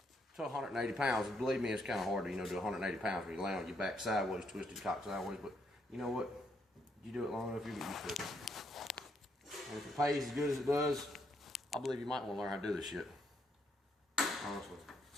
to 180 pounds. And believe me, it's kind of hard to, do 180 pounds when you lay on your back sideways, twisted cock sideways. But you know what? You do it long enough, you get used to it. And if it pays as good as it does, I believe you might want to learn how to do this shit. Honestly.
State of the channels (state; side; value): normal; both; correlation 0.75